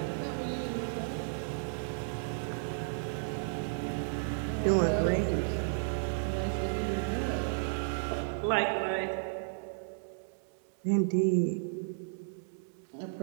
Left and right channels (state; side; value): silent; left; digital silence